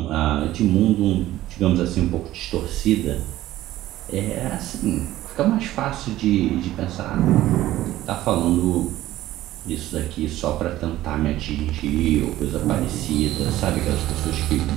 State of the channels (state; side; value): quieter; left; 14.9 dB